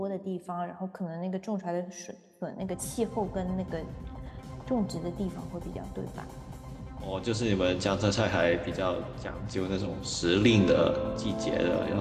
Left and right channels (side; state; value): both; identical; correlation 1.00